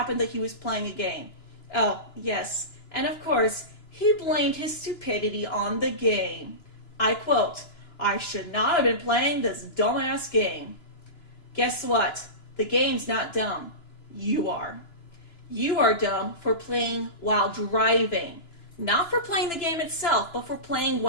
that he was playing a game. Oh, yes. And of course, he blamed his stupidity on the game. I quote, "I should not have been playing this dumbass game." Guess what? The game's not dumb. You are. You are dumb for playing while driving. Not for playing the game itself, but for playing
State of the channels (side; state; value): right; late; 2.9 ms